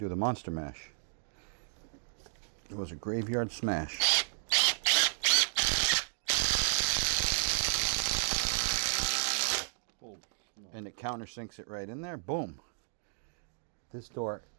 the monster mash. It was a graveyard smash. And it countersinks it right in there. Boom. This door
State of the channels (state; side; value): silent; left; digital silence